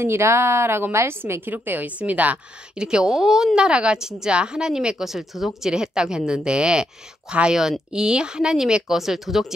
라고 말씀에 기록되어 있습니다. 이렇게 온 나라가 진짜 하나님의 것을 도적질했다고 했는데 과연 이 하나님의 것을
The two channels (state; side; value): normal; both; correlation 0.78